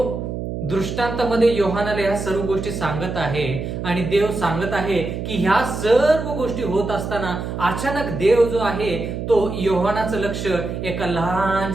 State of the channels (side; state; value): right; noise; hum, 5 dB below the sound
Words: दृष्टांतामध्ये योहानाला ह्या सर्व गोष्टी सांगत आहे आणि देव सांगत आहे की ह्या सर्व गोष्टी होत असताना अचानक देव जो आहे तो योहानाचं लक्ष एका